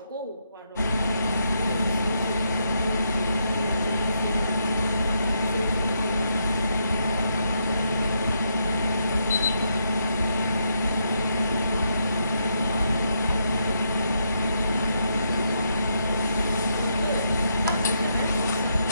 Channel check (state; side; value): inverted; both; correlation -0.79